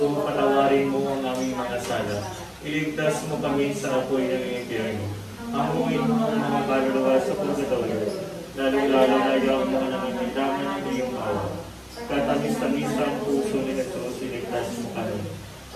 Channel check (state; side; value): identical; both; correlation 1.00